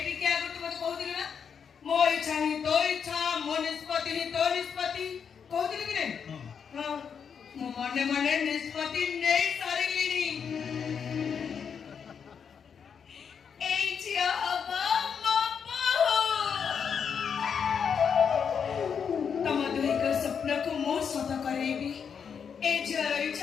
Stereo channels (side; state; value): right; quieter; 6.9 dB